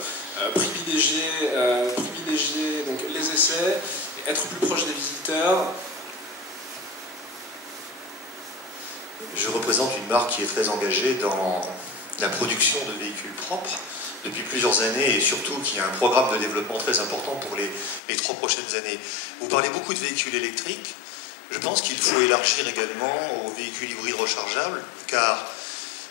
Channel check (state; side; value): drops out; right; at 18.0 s